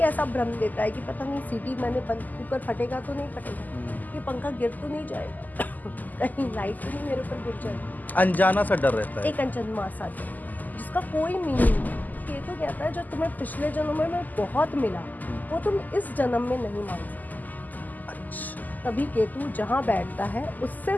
ऐसा भ्रम देता है कि पता नहीं सीटी मैंने बंद, कुकर फटेगा तो नहीं फटेगा, ये पंखा गिर तो नहीं जाएगा, कहीं लाइट तो नहीं मेरे ऊपर गिर जाएगी। अनजाना सा डर रहता है। एक अनजन्मा सा डर जिसका कोई मीनिंग नहीं। केतु कहता है जो तुम्हें पिछले जन्म में बहुत मिला वो तुम इस जन्म में नहीं मांग सकते। अच्छा। तभी केतु जहाँ बैठता है उससे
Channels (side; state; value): right; late; 0.083 ms